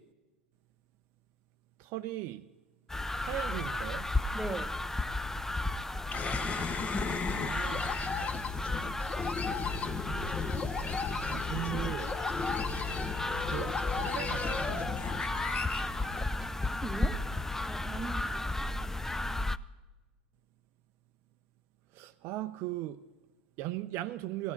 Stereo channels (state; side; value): normal; both; correlation 0.72